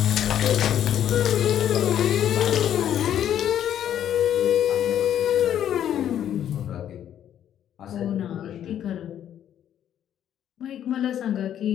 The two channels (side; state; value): right; quieter; 10.4 dB